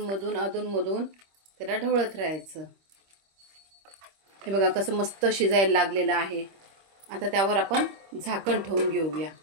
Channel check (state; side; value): late; left; 25 ms